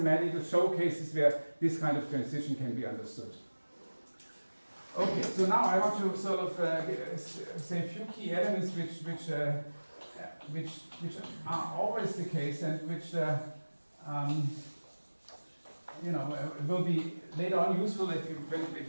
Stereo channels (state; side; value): inverted; both; correlation -1.00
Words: showcases where this kind of transition can be understood. Okay, so now I want to sort of say a few key elements which which are always the case, and which will be later on useful if